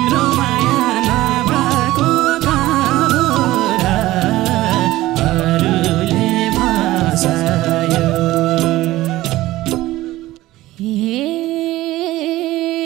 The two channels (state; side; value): quieter; left; 16.7 dB